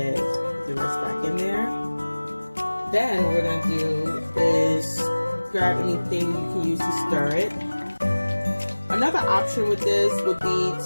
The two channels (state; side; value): inverted; both; correlation -1.00